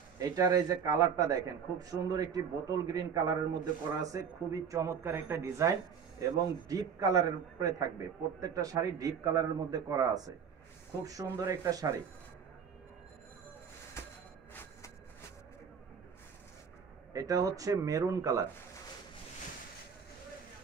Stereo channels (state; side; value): quieter; left; 7.0 dB